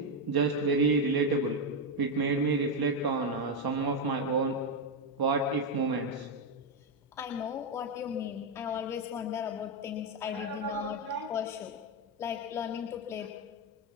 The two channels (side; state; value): both; normal; correlation 0.05